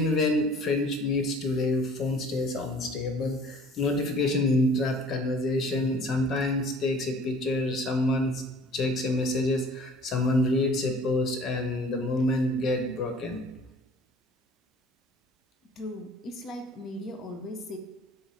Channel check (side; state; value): both; normal; correlation 0.50